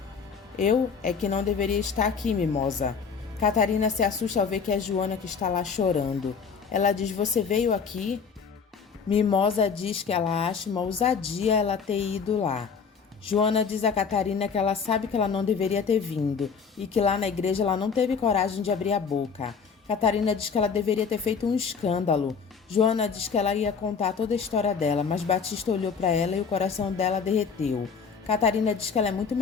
Eu é que não deveria estar aqui, Mimosa. Catarina se assusta ao ver que é Joana que está lá chorando. Ela diz: você veio aqui? Mimosa diz que ela acha uma ousadia ela ter ido lá. Joana diz a Catarina que ela sabe que ela não deveria ter vindo e que lá na igreja ela não teve coragem de abrir a boca. Catarina diz que ela deveria ter feito um escândalo. Joana diz que ela ia contar toda a história dela, mas Batista olhou para ela e o coração dela derreteu. Catarina diz que ela é muito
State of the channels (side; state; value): right; quieter; 5.9 dB